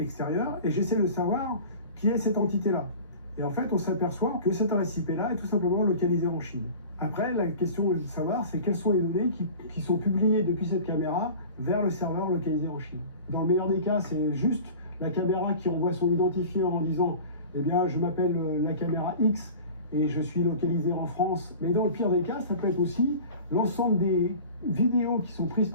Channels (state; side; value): inverted; both; correlation -0.39